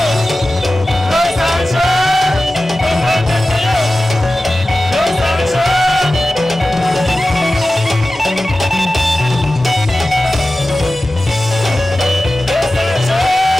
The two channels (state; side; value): normal; both; correlation 0.95